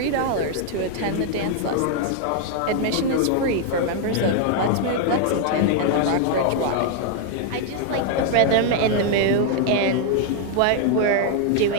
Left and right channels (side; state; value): both; different; correlation 0.00